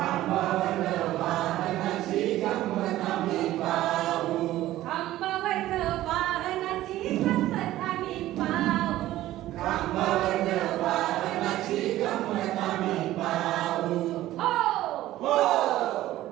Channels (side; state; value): left; quieter; 14.9 dB